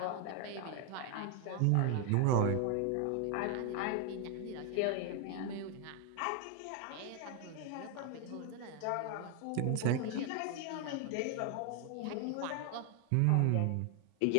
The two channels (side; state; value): both; different; correlation 0.00